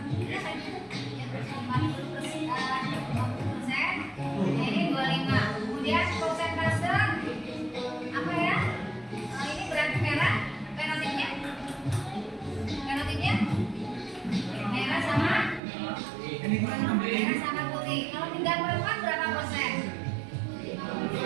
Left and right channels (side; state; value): left; drops out; at 15.6 s